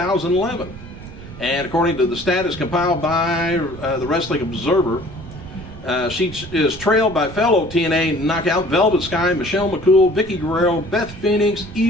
And according to the status compiled by the Wrestling Observer, she is trailed by fellow TNA knockout Velvet Sky, Michelle McCool, Vicky Guerrero, Beth Phoenix,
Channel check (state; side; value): noise; right; rumble, 15 dB below the sound